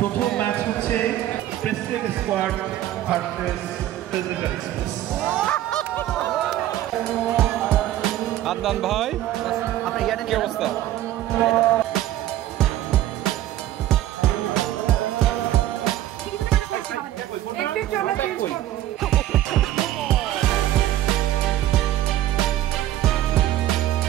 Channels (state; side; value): quieter; left; 13.4 dB